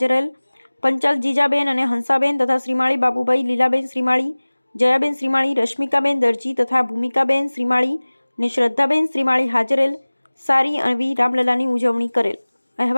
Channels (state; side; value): inverted; both; correlation -1.00